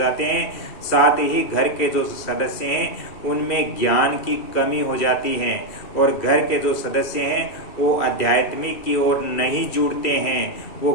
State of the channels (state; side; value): late; right; 2.6 ms